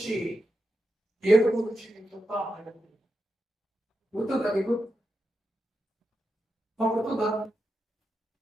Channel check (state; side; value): normal; both; correlation 0.87